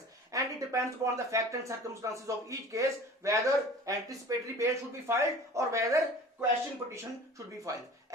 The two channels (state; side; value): normal; both; correlation 0.42